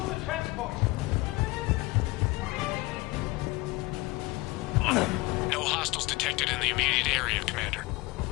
the transport! No hostiles detected in the immediate area, Commander.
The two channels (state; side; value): quieter; right; 21.9 dB